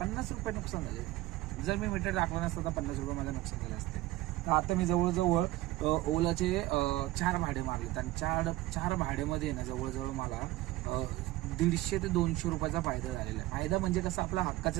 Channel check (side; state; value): left; quieter; 17.3 dB